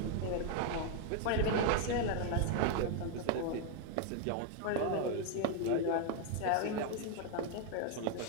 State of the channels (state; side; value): different; both; correlation 0.01